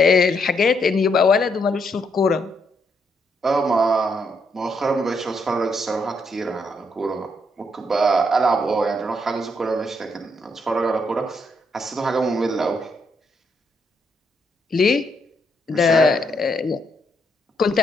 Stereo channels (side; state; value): both; normal; correlation 0.76